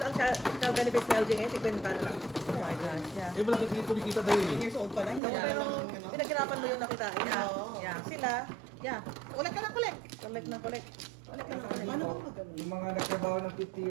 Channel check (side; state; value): left; drops out; at 5.2 s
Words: ang child benefits na LG ngayon, 50 na lang. Oh my gosh, yeah. Eh malaki kumikita dahil eh. Years old pa lang. So, pero pinaghirapan mo yung nakitain. Yeah. Yeah. Sila, Yeah. Ulit ka na kulit. collect ng collect. Paano ba magano? Yung mga nagtrabaho ng 50